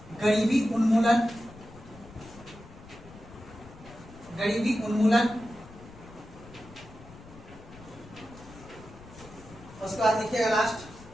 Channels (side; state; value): left; noise; rumble, 19 dB below the sound